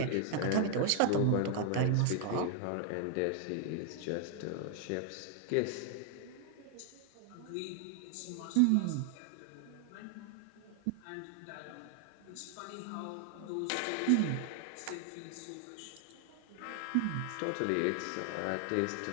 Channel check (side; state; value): both; different; correlation 0.00